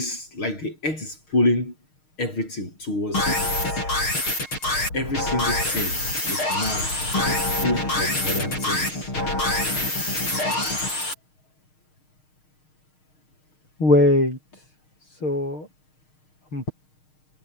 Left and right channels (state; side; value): late; right; 6.5 ms